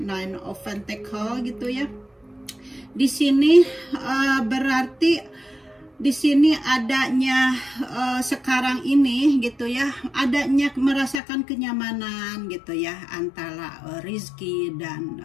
of Pentacle gitu ya. Di sini berarti di sini adanya sekarang ini gitu ya, adanya merasakan kenyamanan gitu ya antara Rizky dan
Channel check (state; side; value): drops out; right; at 11.2 s